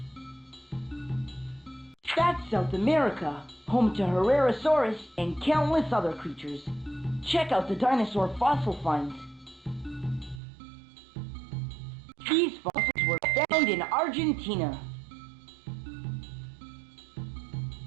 That's South America, home to Herrerasaurus and countless other creatures. Check out the dinosaur fossil finds. These fossils were found in Argentina.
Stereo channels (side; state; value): left; drops out; at 10.4 s